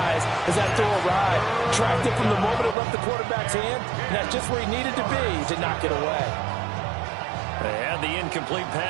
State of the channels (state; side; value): drops out; left; at 2.8 s